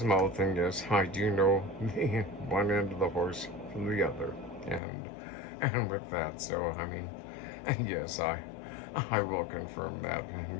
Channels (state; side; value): drops out; right; at 4.8 s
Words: mouth, and yes, I do know the one end of the horse from the other, and with that, so I mean, yes, I will confirm that,